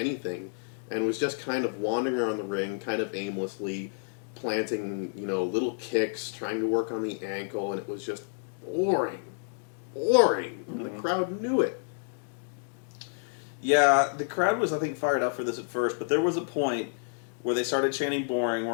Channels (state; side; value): silent; right; digital silence